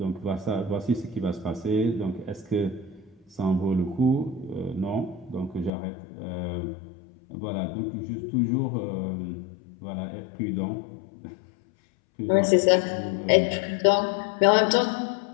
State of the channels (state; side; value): drops out; right; at 5.7 s